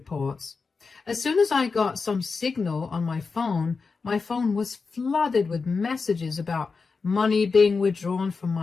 As soon as I got some signal on my phone was flooded with messages about money being withdrawn from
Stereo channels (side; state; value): right; quieter; 4.7 dB